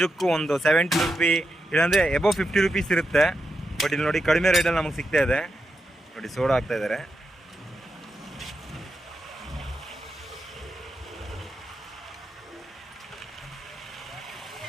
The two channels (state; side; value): normal; both; correlation 0.86